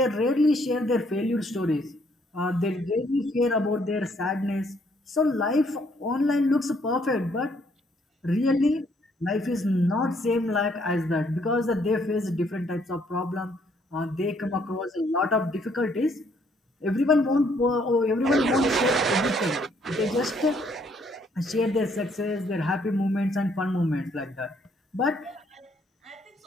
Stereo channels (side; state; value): both; normal; correlation 0.68